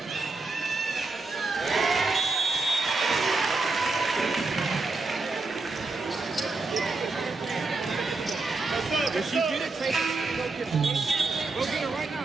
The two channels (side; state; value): left; quieter; 3.6 dB